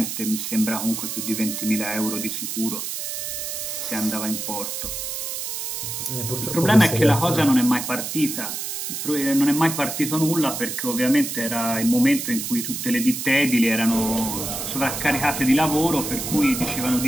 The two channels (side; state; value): right; noise; hiss, 5 dB below the sound